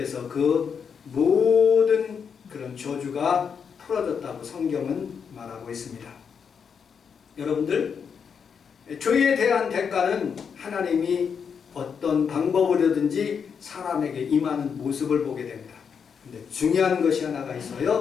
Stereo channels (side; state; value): right; quieter; 6.7 dB